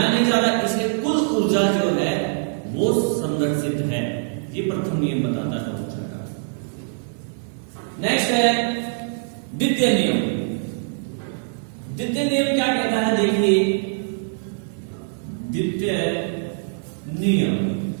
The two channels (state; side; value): silent; left; digital silence